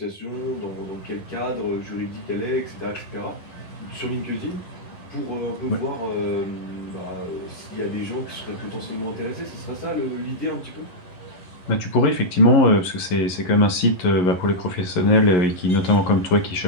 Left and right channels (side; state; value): right; late; 11 ms